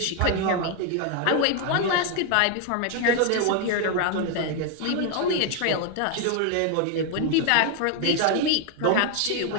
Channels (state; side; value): different; both; correlation 0.01